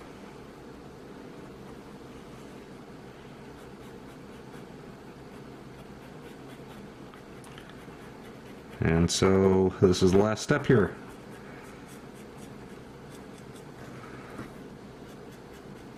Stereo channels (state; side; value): identical; both; correlation 1.00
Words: And so this is the last step here.